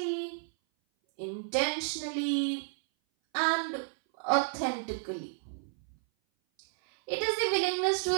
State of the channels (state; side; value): silent; left; 57 dB below the other